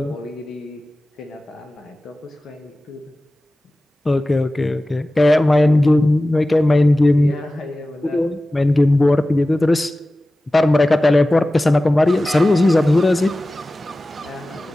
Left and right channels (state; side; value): normal; both; correlation 0.96